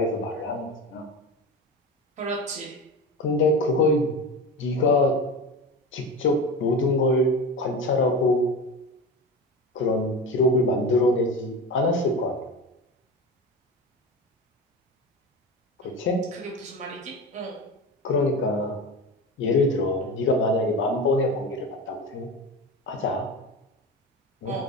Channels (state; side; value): normal; both; correlation 0.27